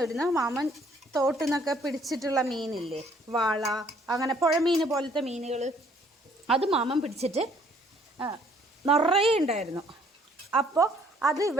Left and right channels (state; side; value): normal; both; correlation 0.62